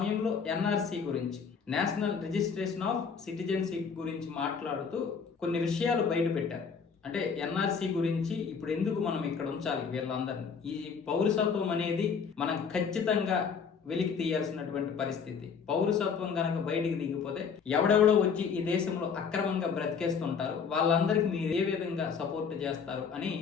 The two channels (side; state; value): right; quieter; 6.1 dB